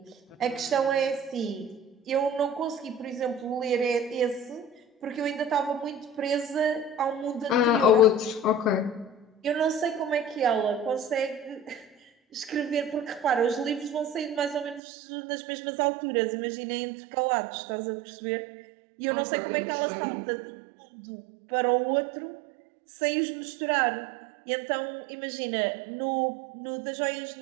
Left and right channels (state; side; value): drops out; left; at 14.8 s